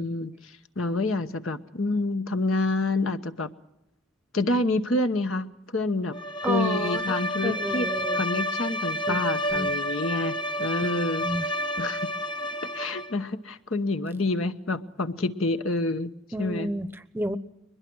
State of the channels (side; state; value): both; normal; correlation 0.42